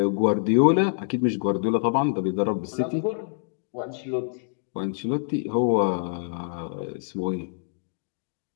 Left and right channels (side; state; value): right; silent; digital silence